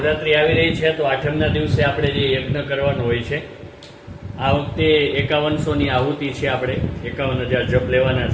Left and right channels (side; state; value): both; identical; correlation 1.00